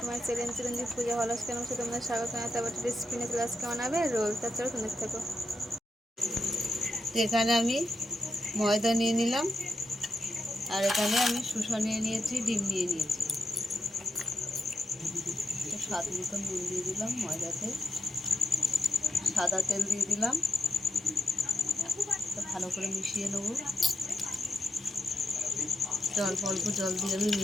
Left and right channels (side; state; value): both; normal; correlation 0.84